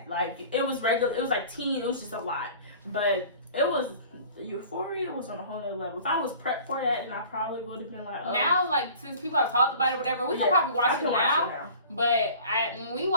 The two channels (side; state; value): both; inverted; correlation -0.45